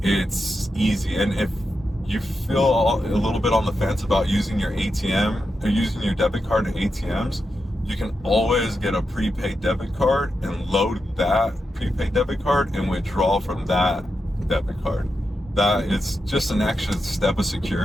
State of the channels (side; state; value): both; normal; correlation 0.87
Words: it's easy. And if you feel a little bit on the fence about using your ATM or using your debit card at ATMs, you can always get a prepaid debit card and load that prepaid debit card and withdraw from that debit card. That is just an extra step of